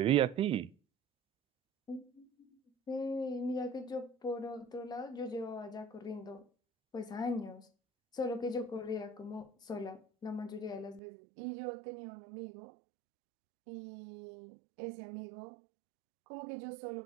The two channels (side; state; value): left; drops out; at 11.0 s